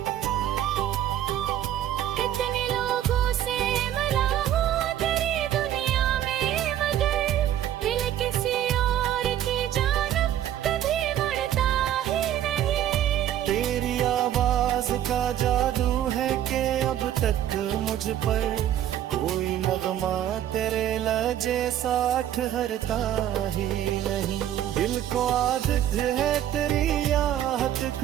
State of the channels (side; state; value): left; quieter; 11.4 dB